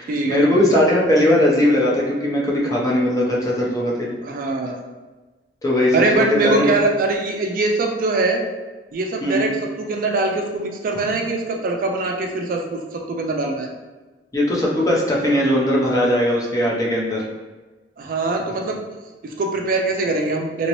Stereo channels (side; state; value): both; normal; correlation 0.45